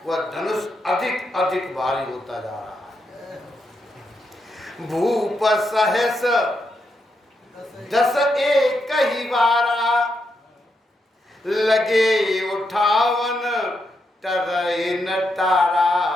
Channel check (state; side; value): normal; both; correlation 0.82